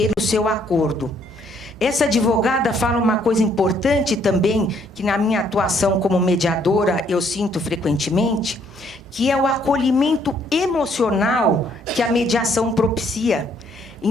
seu acordo. Essa advogada fala uma coisa importante também, que na minha atuação como mediadora eu sinto frequentemente, que é o acolhimento emocional que a mediação propicia.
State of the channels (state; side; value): normal; both; correlation 0.67